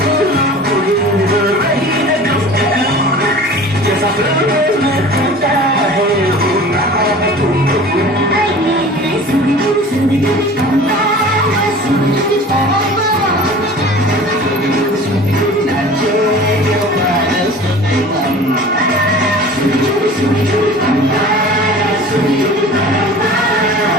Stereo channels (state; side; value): normal; both; correlation 0.41